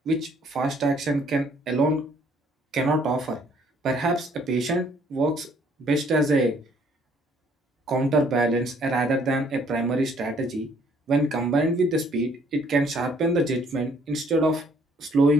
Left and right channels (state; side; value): normal; both; correlation 0.62